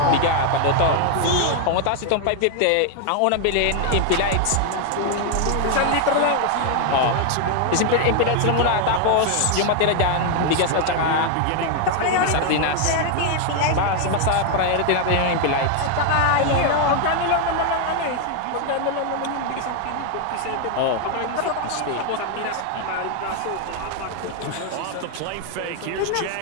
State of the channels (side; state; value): both; different; correlation 0.00